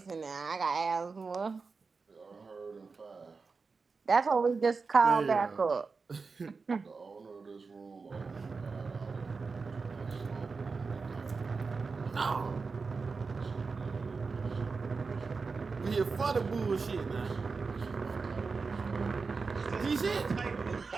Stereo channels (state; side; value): quieter; left; 4.6 dB